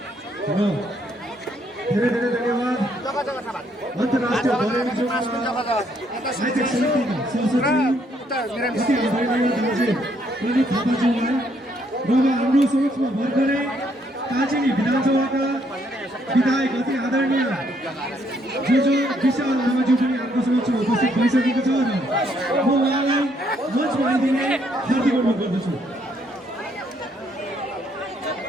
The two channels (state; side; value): normal; both; correlation 0.70